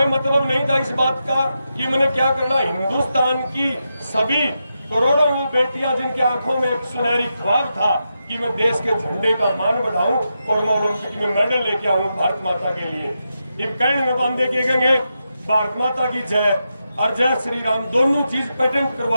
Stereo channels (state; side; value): inverted; both; correlation -0.87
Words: मतलब नहीं था इस बात का कि मैंने क्या करना। हिंदुस्तान की सभी करोड़ों बेटियां जिनकी आंखों में एक सुनहरी ख्वाब था कि मैं देश के झंडे का मान बढ़ाऊं और मैं ओलंपिक में मेडल लेके आऊं भारत माता के लिए। एक कैंड में बांधे के गएंगे भारत माता की जय और जय श्री राम, दोनों चीज पेटेंट